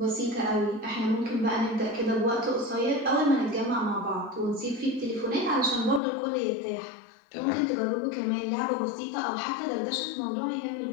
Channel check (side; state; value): right; drops out; at 6.0 s